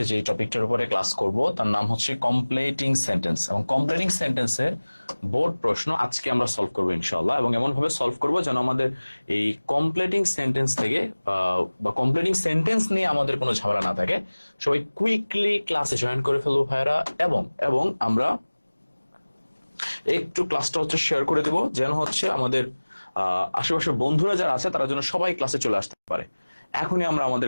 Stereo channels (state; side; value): inverted; both; correlation -1.00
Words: যে টপিকটার উপরে ক্লাস করব তার নাম হচ্ছে কমপ্লিটিং সেন্টেন্স, এবং কমপ্লিটিং সেন্টেন্সের বোর্ড প্রশ্ন আজকে আমরা সলভ করবো ইনশাআল্লাহ। এবং এমন ভাবে সলভ করব যেন আমাদের এই কমপ্লিটিং সেন্টেন্স থেকে বা কমপ্লিটিং সেন্টেন্স নিয়ে আমাদের কোনো ঝামেলা না থাকে। সবাই কুইকলি ক্লাসে জয়েন করে ফেলবো ভাইয়ারা, এবং এবং আমরা একটু ক্লাসটা হচ্ছে শেয়ার করে দেব যেন হচ্ছে আমাদের আশেপাশের বন্ধুরা যারা আছে তারা যেন সবাই ক্লাসে চলে আসতে পারে। এখনই আমরা আমাদের